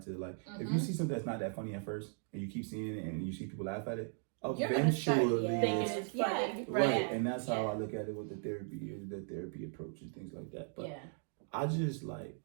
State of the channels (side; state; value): left; silent; 53 dB below the other